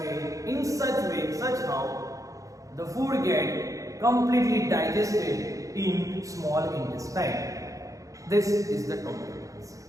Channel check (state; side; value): late; left; 0.16 ms